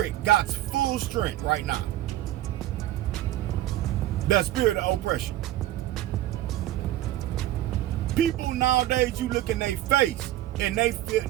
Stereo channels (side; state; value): left; quieter; 14.4 dB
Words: got full strength right now. That spirit of oppression. People nowadays, you look in their face and they feel,